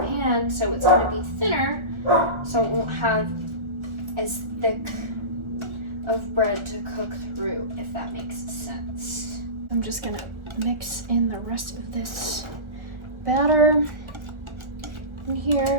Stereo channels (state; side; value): late; left; 1.4 ms